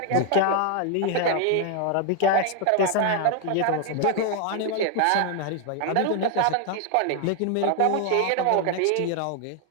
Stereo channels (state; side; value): different; both; correlation 0.00